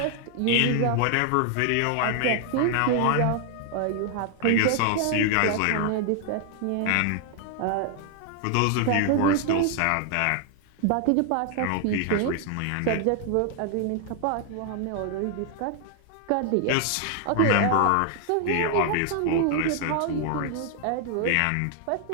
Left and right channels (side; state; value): both; different; correlation 0.00